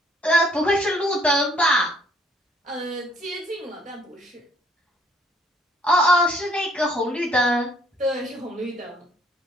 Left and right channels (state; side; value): normal; both; correlation 0.63